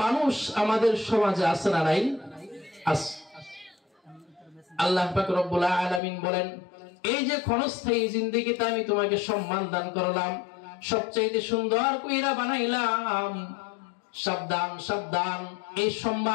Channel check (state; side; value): drops out; right; at 6.0 s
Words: মানুষ আমাদের সমাজে আছে না নাই আছে আল্লাহ পাক রব্বুল আলামিন বলেন এই যে ক্ষণস্থায়ী জিন্দেগিতে আমি তোমাকে সম্মান দান করলাম সবচাইতে সুন্দর কইরা বানাইলাম সাবধান সাবধান এই